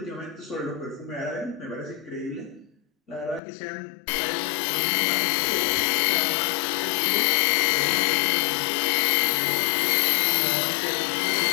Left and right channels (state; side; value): drops out; right; at 3.4 s